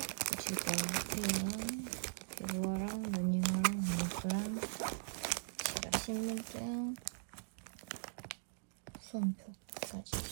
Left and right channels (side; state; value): left; silent; digital silence